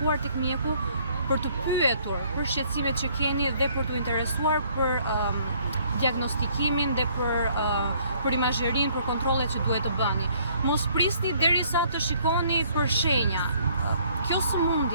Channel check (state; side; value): inverted; both; correlation -0.62